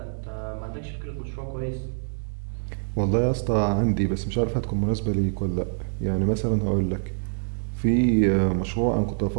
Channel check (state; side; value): silent; left; digital silence